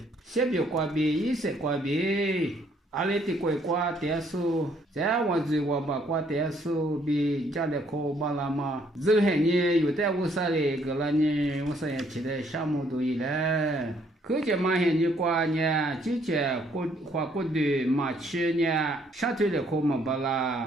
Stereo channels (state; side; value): normal; both; correlation 0.66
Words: 先别挂别，一些挂别。阿里的乖乖点数，在我这我把挂点数比家里可巴拉嘛，这些年有的50嘞个了呢，50也起来项目都有了。可见马现你挂呢，之前花过的马去呢，下头的可没巴